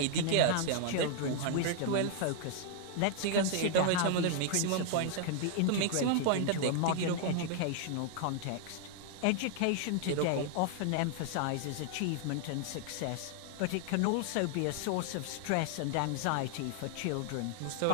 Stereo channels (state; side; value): different; both; correlation 0.00